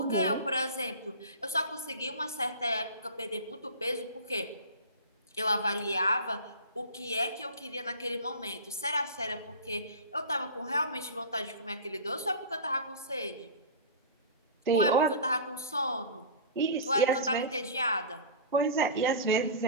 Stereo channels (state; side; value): inverted; both; correlation -0.33